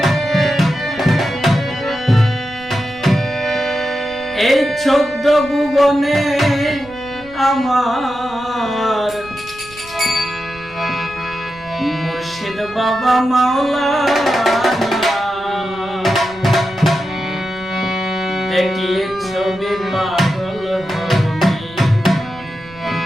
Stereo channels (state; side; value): noise; right; rumble, 22 dB below the sound